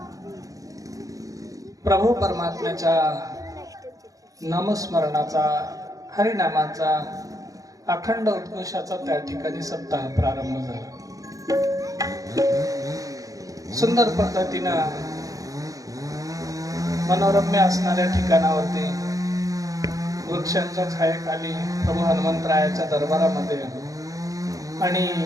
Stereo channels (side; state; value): left; late; 0.17 ms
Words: प्रभू परमात्म्याच्या नामस्मरणाचा, हरिनामाचा, अखंड उद्घोषाचा त्या ठिकाणी सप्ताह प्रारंभ झाला. सुंदर पद्धतीनं मनोरम्य असणाऱ्या ठिकाणावरती वृक्षांच्या छायेखाली प्रभू हनुमंतरायाच्या दरबारामध्ये आणि